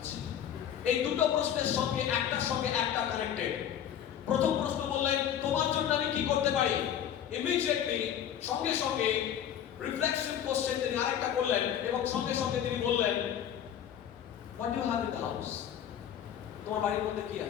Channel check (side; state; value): right; quieter; 9.8 dB